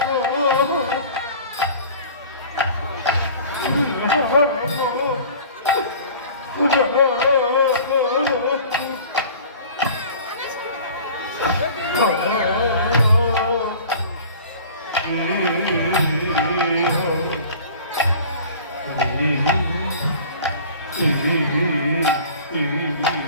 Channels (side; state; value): both; inverted; correlation -0.44